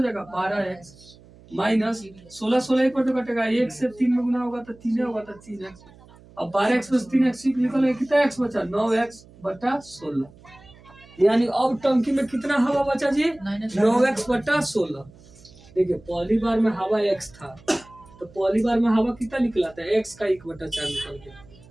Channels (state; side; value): noise; right; hum, 24 dB below the sound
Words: जाएगा 12x, माइनस 16 16 एक बार तो कटेगा, 1 से 3 में गुना होगा तो 3 होगा तो 3x। अब 12x + 3x निकलेगा, कितना x बचा 9x/16, यानी अब टंकी में कितना हवा बचा जी 9x/16। देखिए पहली बार में हवा x था, तो पहली बार में हवा कितना निकला था, x का 1/4 निकल गया।